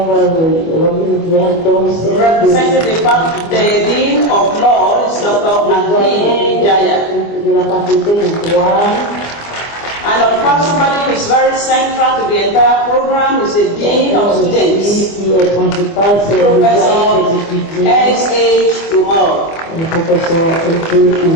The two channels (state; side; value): late; right; 24 ms